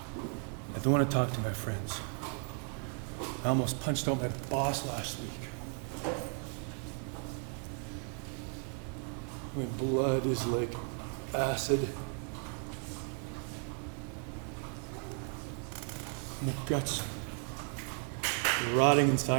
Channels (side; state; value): left; quieter; 39.3 dB